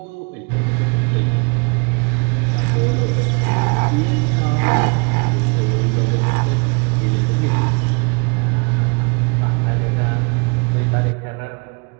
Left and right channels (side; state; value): left; quieter; 33.5 dB